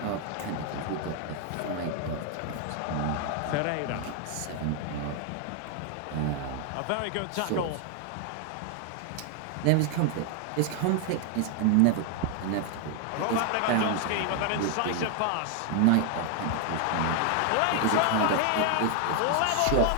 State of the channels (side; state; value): both; different; correlation 0.00